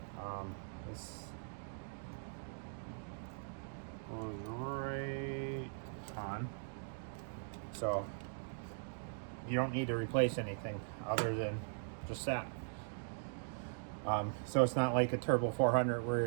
This goes right on. So you don't need to replace anything other than just that. So it's not like a Turbo 400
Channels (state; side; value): silent; left; digital silence